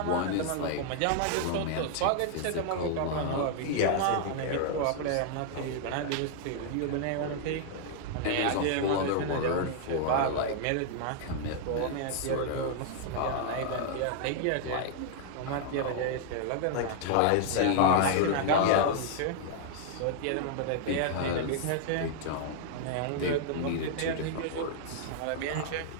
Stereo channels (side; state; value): both; different; correlation -0.01